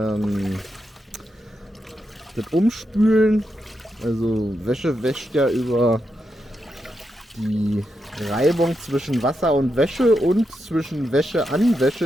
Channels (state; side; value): normal; both; correlation 0.85